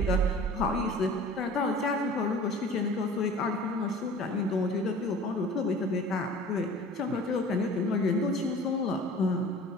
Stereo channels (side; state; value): both; normal; correlation 0.43